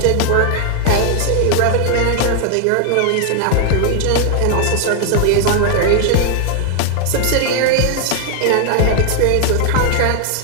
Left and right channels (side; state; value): both; different; correlation 0.00